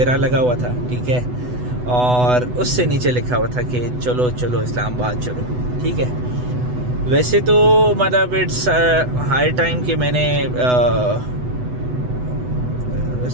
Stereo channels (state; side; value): late; left; 8.1 ms